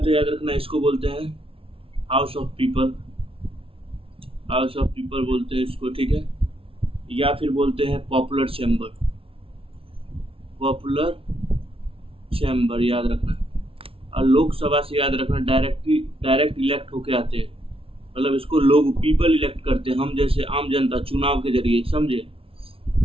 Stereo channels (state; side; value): late; left; 0.26 ms